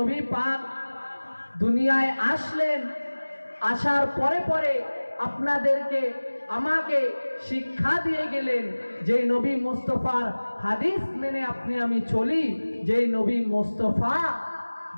পাক দুনিয়ায় আসলেন, আসার পরে পরে আপনাদেরকে আমাকে শিক্ষা দিয়ে গেলেন। যেই নবী মুস্তাফার হাদিস মেনে আপনি আমি চলি, যেই নবী মুস্তাফা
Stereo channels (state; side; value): inverted; both; correlation -1.00